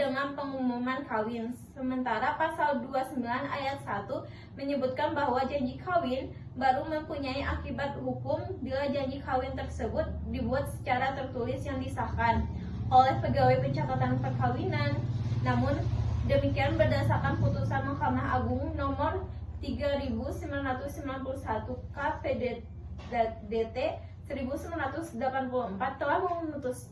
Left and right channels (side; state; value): both; identical; correlation 1.00